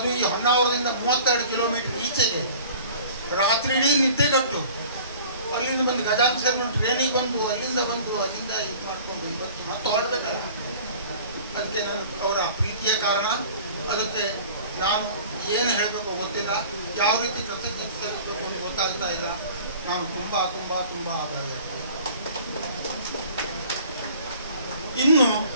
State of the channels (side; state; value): both; inverted; correlation -0.47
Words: ಈ ಹೊನ್ನಾವರದಿಂದ 32 ಕಿಲೋಮೀಟರ್ ಈಚೆಗೆ ರಾತ್ರಿ ಇಡೀ ನಿದ್ದೆಗಟ್ಟು ಅಲ್ಲಿಂದ ಬಂದು ಗಜಾನನ ಶರ್ಮಾ ಟ್ರೈನಿಗೆ ಬಂದು ಅಲ್ಲಿಂದ ಇದು ಮಾಡಿಕೊಂಡು ಇವತ್ತು ಮತ್ತೆ ಹೊರಡ್ಬೇಕಲ್ಲ. ಅದಕ್ಕೆ ನಾನು ಅವರ ಪ್ರೀತಿಯ ಕಾರಣ. ಅದಕ್ಕೆ ನಾನು ಏನು ಹೇಳಬೇಕು ಗೊತ್ತಿಲ್ಲ, ಯಾವ ರೀತಿ ಕೃತಜ್ಞತೆ ಸಲ್ಲಿಸಬೇಕು ಅಂತ ಗೊತ್ತಾಗ್ತಾ ಇಲ್ಲ. ನಾನು ತುಂಬ ತುಂಬ ತುಂಬ ಆಭಾರಿಯಾಗ್ತೇನೆ. ಇನ್ನು